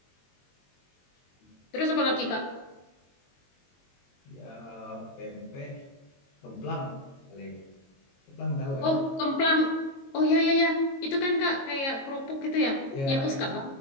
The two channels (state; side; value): late; right; 22 ms